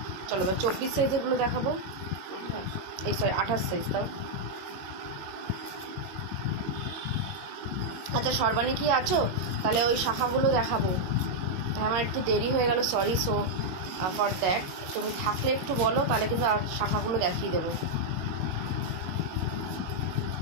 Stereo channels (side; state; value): left; late; 22 ms